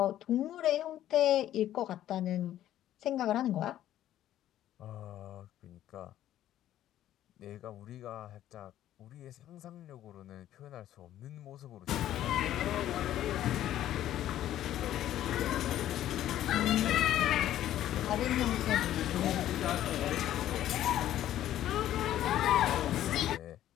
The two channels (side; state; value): right; quieter; 12.5 dB